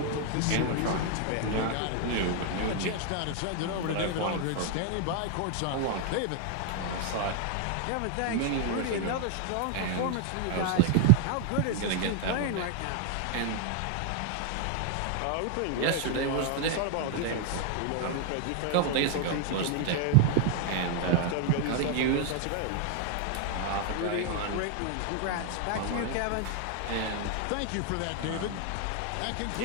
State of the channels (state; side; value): different; both; correlation 0.00